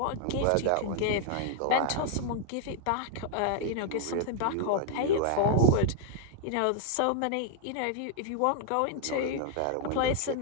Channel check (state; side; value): different; both; correlation 0.00